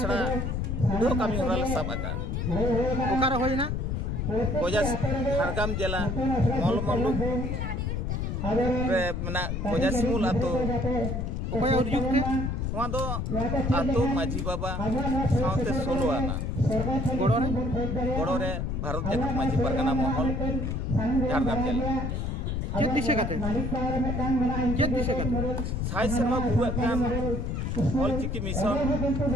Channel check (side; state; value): left; noise; rumble, 1 dB below the sound